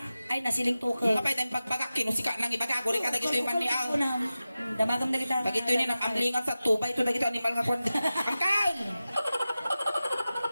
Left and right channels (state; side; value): inverted; both; correlation -0.94